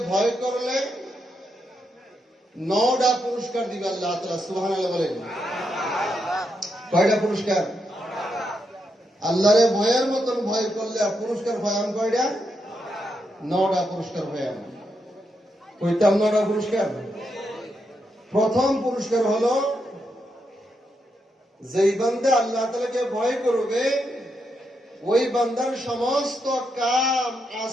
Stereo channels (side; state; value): both; normal; correlation 0.82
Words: ভয় করলে 9টা পুরস্কার দিবে আল্লাহ তাআলা। সুবহানাল্লাহ বলেন। কয়টা পুরস্কার? আল্লাহরে ভয়ের মতন ভয় করলে পুরস্কার পাইলাম কয়টা? 9টা পুরস্কার পাইলাম। কইতাম 9টা পুরস্কার। প্রথম পুরস্কার হলো, যেই বান্দা আল্লাহ তাআলাকে ভয় করবে ওই বান্দার সমস্ত কাম